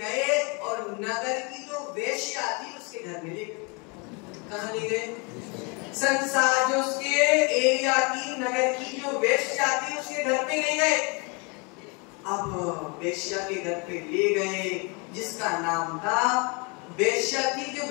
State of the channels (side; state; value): right; quieter; 31.5 dB